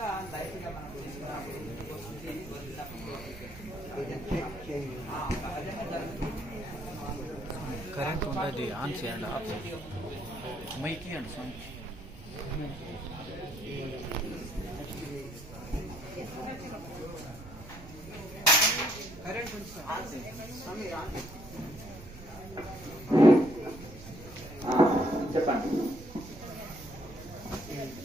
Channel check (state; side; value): noise; right; rumble, 15 dB below the sound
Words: లైట్ గా మనకు సహజంగా జరుగుతుంది. కరెంట్ ఉంటుంది, ఆన్ చేయండి, ఆఫ్ చేయండి, మైక్ ఇవ్వండి స్వామి. కరెంట్ చెప్పండి.